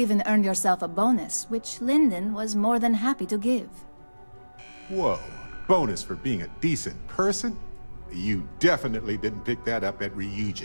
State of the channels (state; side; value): inverted; both; correlation -1.00